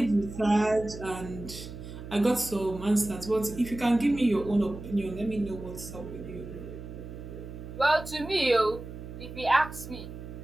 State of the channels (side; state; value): right; noise; hum, 11 dB below the sound